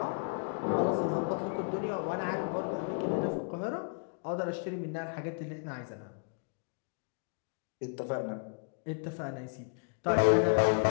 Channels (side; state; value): right; quieter; 38.7 dB